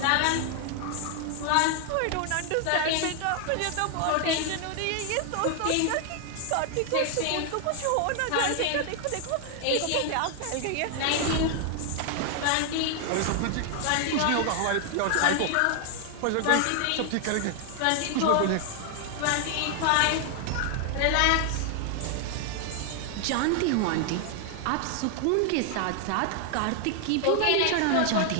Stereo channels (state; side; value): different; both; correlation 0.00